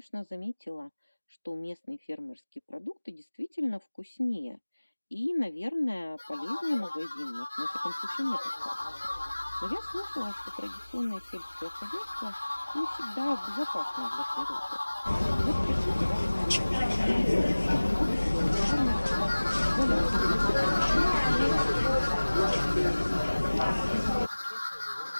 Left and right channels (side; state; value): both; inverted; correlation -1.00